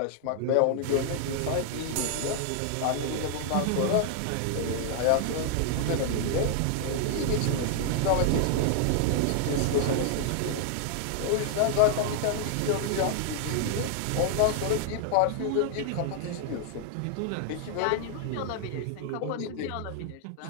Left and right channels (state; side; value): different; both; correlation 0.00